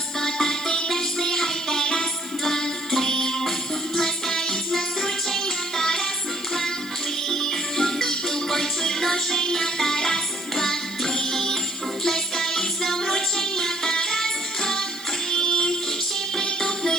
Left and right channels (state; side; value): noise; right; hiss, 19 dB below the sound